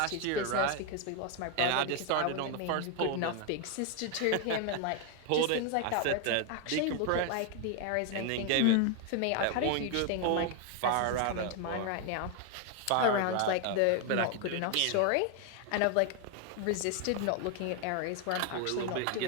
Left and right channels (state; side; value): different; both; correlation 0.01